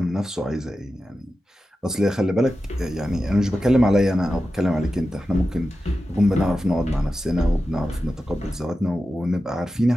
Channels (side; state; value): both; normal; correlation 0.92